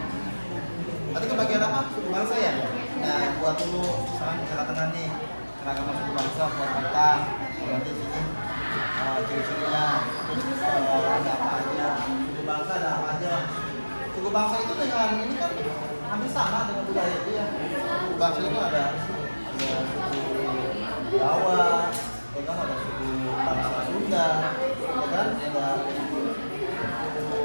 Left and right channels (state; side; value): inverted; both; correlation -1.00